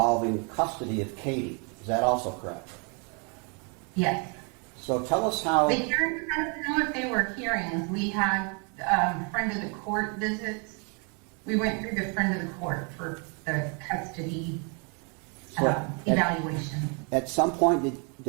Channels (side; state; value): left; quieter; 35.7 dB